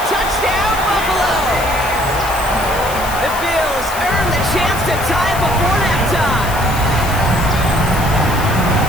Touchdown, Buffalo. The Bills earn the chance to tie it before halftime.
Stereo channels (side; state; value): left; noise; hiss, 11 dB below the sound